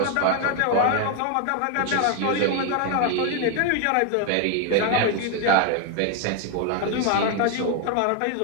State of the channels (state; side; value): different; both; correlation 0.01